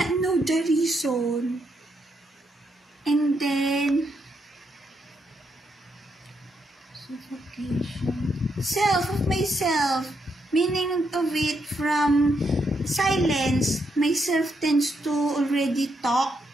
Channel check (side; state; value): both; normal; correlation 0.79